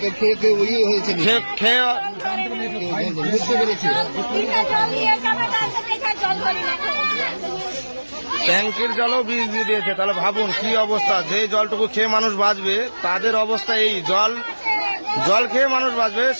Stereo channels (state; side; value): inverted; both; correlation -1.00